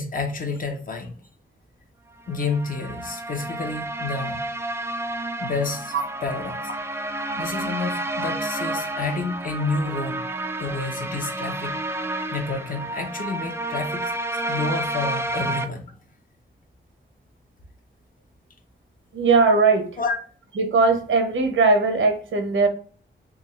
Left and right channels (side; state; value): both; normal; correlation 0.07